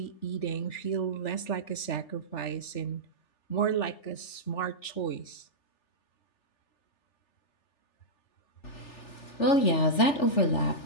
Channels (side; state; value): right; late; 3.4 ms